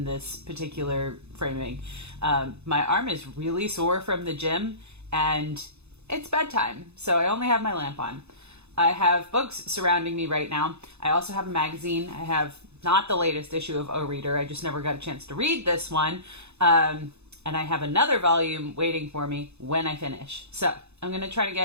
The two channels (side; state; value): left; late; 0.81 ms